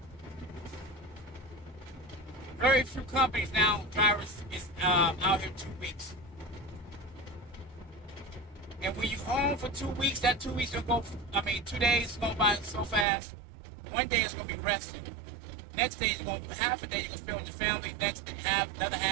Very few companies now, drivers is out here 2 weeks. And when you home for 2 weeks, that 2 weeks gonna go, 2 days is gonna go by so fast. One day is gonna be resting. Next day is gonna be half a day you're gonna spend with your family. Next half, another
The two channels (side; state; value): left; drops out; at 13.1 s